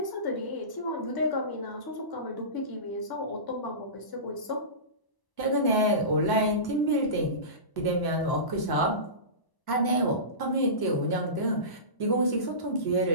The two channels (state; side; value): late; right; 1.0 ms